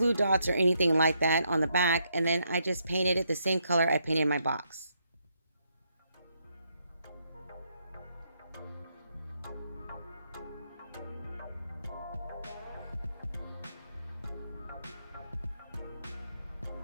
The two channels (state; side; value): inverted; both; correlation -0.77